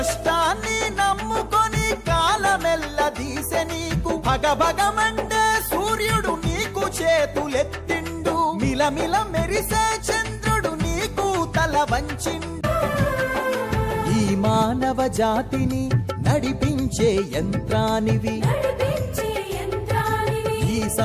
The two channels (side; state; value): both; identical; correlation 1.00